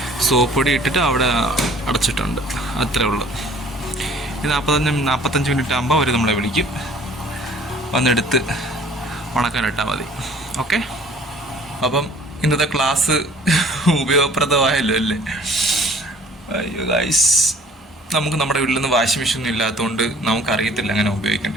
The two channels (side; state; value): both; normal; correlation 0.53